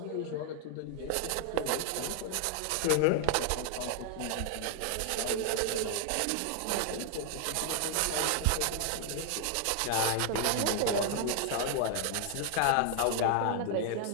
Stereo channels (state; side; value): different; both; correlation 0.00